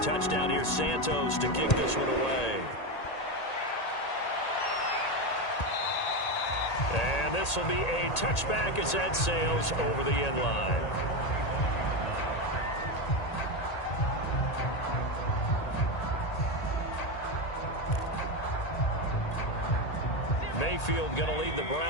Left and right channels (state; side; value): late; right; 1.8 ms